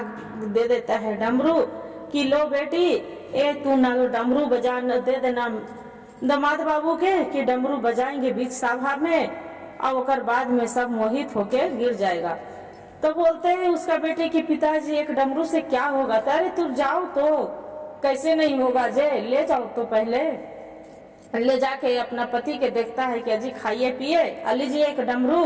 दे देता है डमरू कि लो बेटी ए तू ना डमरू बजा दे देना दामाद बाबू के कि डमरू बजाएंगे बीच सभा में और ओकर बाद में सब मोहित होके गिर जाएगा। तो बोलते हैं उसका बेटे कि पिताजी एक डमरू से क्या होगा? अरे तू जाओ तो कैसे नहीं होगा जे, ले जाओ तो पहले ले जाके अपना पति के देखता है कि अजी खाइए पिए, लीजिए एक डमरू,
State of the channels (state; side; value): identical; both; correlation 1.00